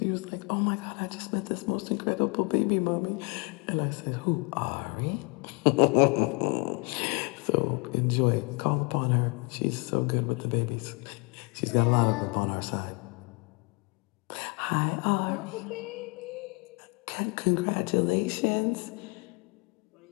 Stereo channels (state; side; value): quieter; right; 31.8 dB